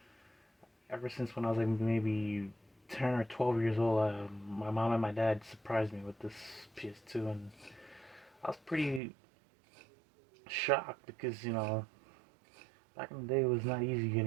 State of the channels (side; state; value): left; drops out; at 9.0 s